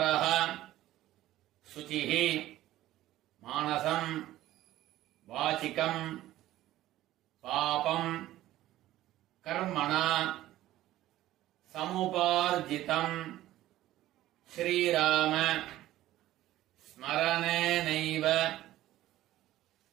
சுசிः மானசம் வாசிகம் பாபம் கர்மணா சமுபார்ஜிதம் ஸ்ரீராம ஸ்மரணேனைவ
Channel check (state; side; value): quieter; left; 14.8 dB